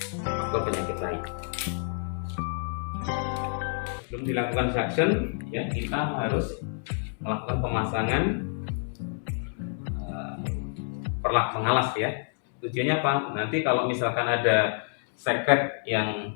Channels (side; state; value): right; silent; digital silence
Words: faktor penyakit lain. Sebelum dilakukan suction ya, kita harus melakukan pemasangan perlak pengalas ya. Tujuannya apa? Nanti kalau misalkan ada sekret yang